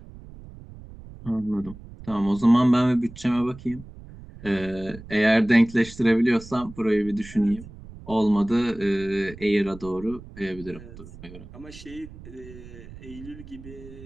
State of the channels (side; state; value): right; noise; rumble, 17 dB below the sound